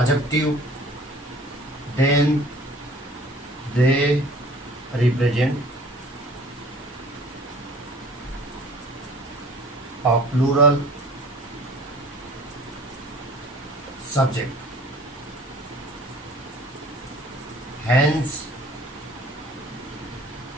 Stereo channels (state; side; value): normal; both; correlation 0.49